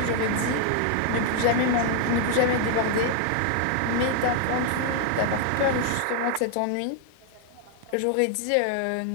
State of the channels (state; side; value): different; both; correlation 0.00